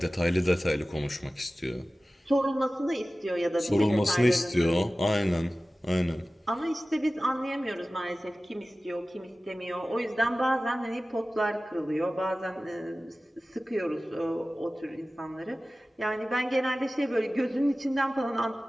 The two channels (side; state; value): both; normal; correlation 0.96